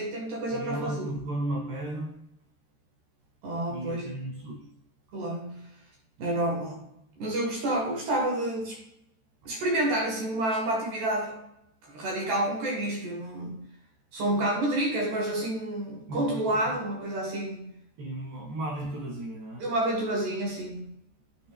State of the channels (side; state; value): left; late; 14 ms